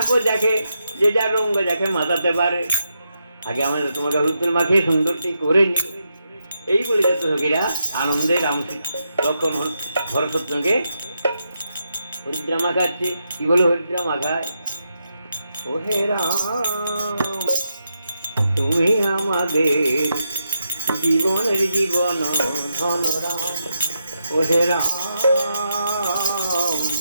দেখে যে যার রঙ দেখে মাতাতে পারে। আগে আমরা তোমাকে হলুদ তেল মাখিয়ে সুন্দরটি করে নিই। এই বলে যাচ্ছে সখীরা আনন্দে রাম লক্ষণ ভরতকে হরিদ্রা মাখাচ্ছে। কি বলে হরিদ্রা মাখায়? ও হে রাম, তুমি আমাদের জীবনের জীবন ধন রাম, ও হে রাম,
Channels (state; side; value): inverted; both; correlation -0.83